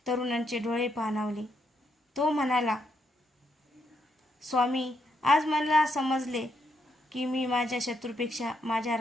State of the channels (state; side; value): normal; both; correlation 0.77